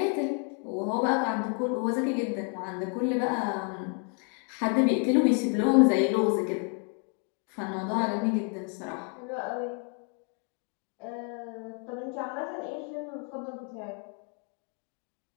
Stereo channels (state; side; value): quieter; right; 37.9 dB